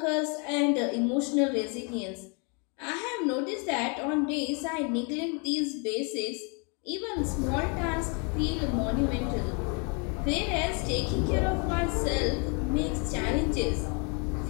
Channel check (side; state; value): right; quieter; 35.5 dB